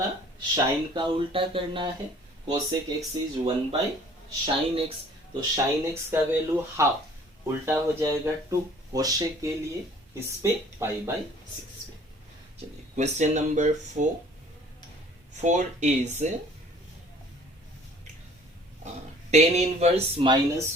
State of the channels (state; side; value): normal; both; correlation 0.53